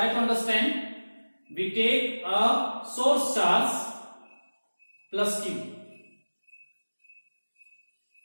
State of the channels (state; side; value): inverted; both; correlation -1.00